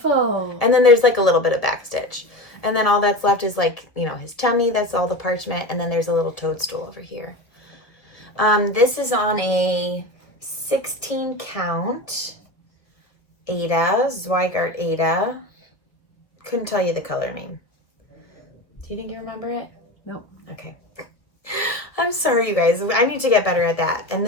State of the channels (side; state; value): right; late; 1.7 ms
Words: And then there's like a little bit of back stitch. And then all that's left is like, you know, his tummy. That's all the parchment. And then there's a little toadstool over here. This is on a 16 count Ada, Zweigart Ada. Couldn't tell you the color name. Do you think you remember it? No. Okay. I'm sorry, you guys. I need to get better at that. And